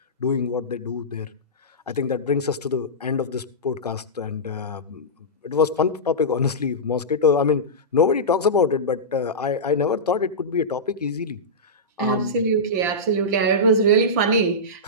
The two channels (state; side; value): normal; both; correlation -0.15